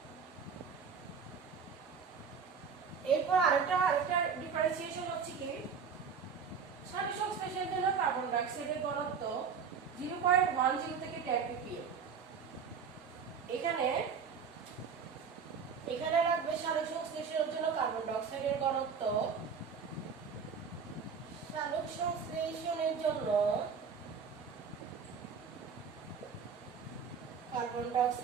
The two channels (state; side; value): quieter; left; 6.3 dB